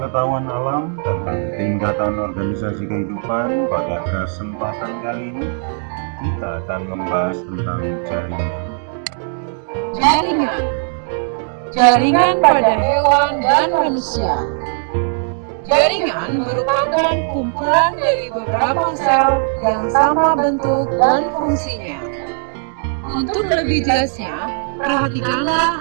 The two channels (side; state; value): left; silent; 58 dB below the other